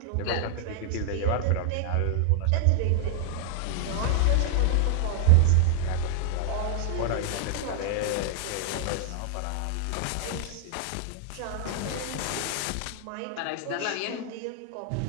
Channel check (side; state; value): both; different; correlation 0.00